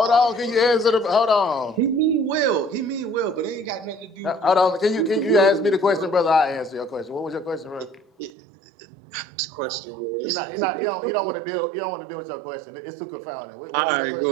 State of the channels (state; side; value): drops out; left; at 8.3 s